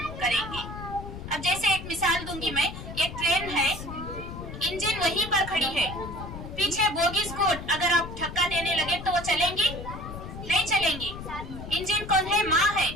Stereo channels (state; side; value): noise; left; rumble, 10 dB below the sound